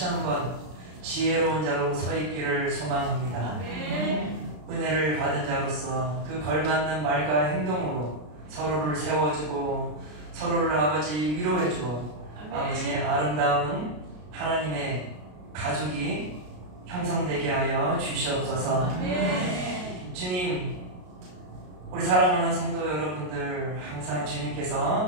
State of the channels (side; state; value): left; late; 33 ms